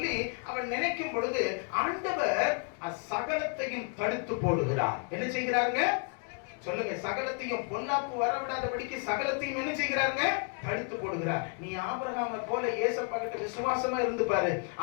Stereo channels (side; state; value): right; quieter; 38.8 dB